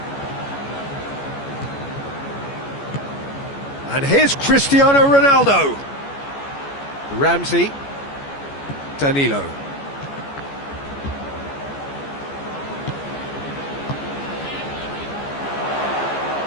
And here's Cristiano Ronaldo. Ramsey.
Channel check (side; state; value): right; late; 14 ms